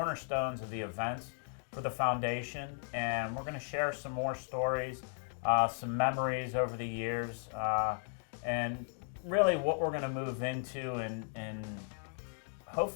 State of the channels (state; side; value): silent; right; 54 dB below the other